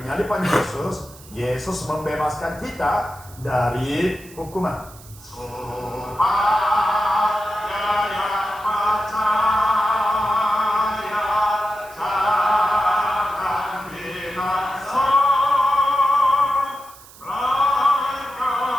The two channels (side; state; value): right; noise; hiss, 21 dB below the sound